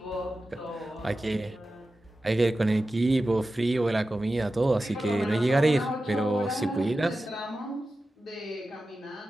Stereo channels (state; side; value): normal; both; correlation 0.93